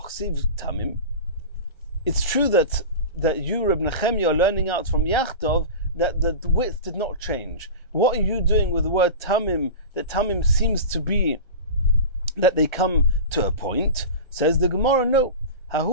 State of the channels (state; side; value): late; right; 1.3 ms